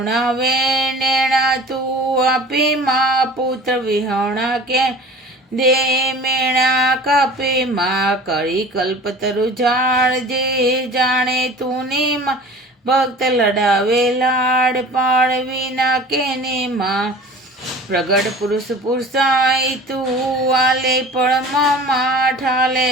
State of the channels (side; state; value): both; normal; correlation 0.42